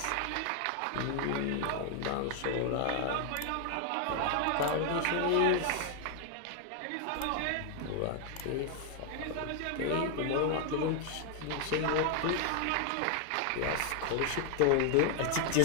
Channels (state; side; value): different; both; correlation 0.00